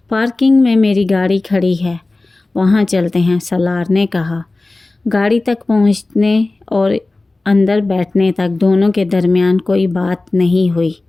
پارکنگ میں میری گاڑی کھڑی ہے، وہاں چلتے ہیں، سالار نے کہا۔ گاڑی تک پہنچنے اور اندر بیٹھنے تک دونوں کے درمیان کوئی بات نہیں ہوئی۔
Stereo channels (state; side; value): quieter; right; 3.1 dB